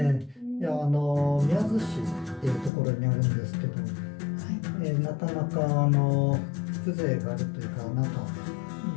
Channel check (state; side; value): drops out; right; at 2.7 s